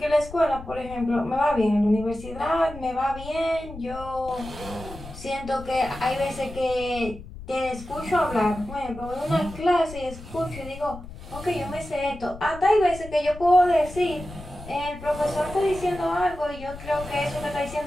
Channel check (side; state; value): left; noise; rumble, 14 dB below the sound